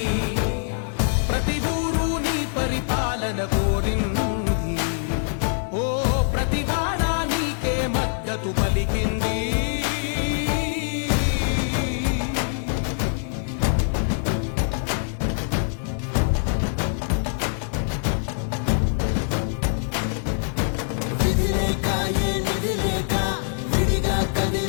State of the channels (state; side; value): silent; right; digital silence